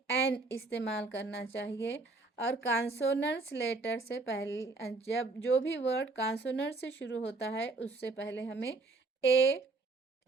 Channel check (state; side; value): quieter; left; 3.5 dB